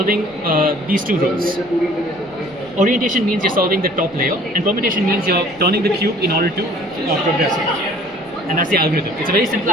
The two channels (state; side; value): noise; right; rumble, 26 dB below the sound